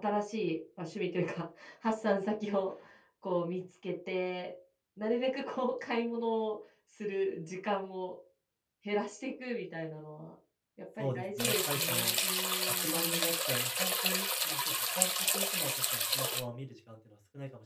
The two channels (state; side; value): identical; both; correlation 1.00